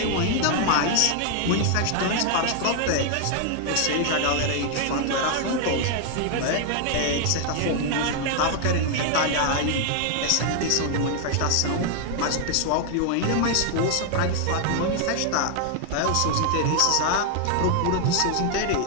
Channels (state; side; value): different; both; correlation 0.00